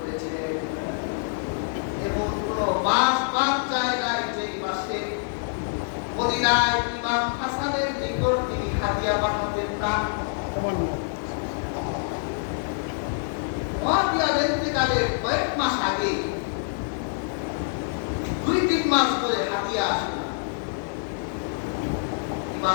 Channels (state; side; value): silent; right; digital silence